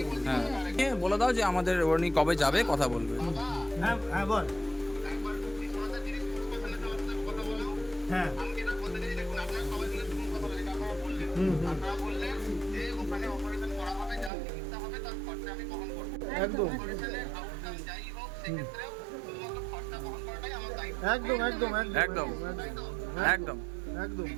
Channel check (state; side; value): drops out; left; at 14.3 s